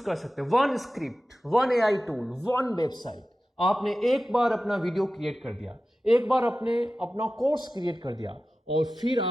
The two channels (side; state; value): both; normal; correlation 0.94